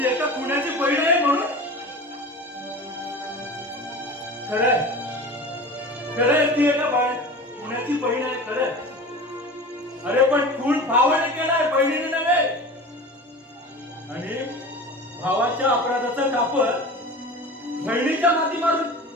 एका पुण्याची बहीण आहे म्हणून? खरंय ती एका पुण्याची बहीण आहे खरंय. अरे पण खून भावाने केलाय, बहिणीने नव्हे. आणि भावाच्या अपराधाचं कापड बहिणीच्या माती मारून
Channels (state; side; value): normal; both; correlation 0.34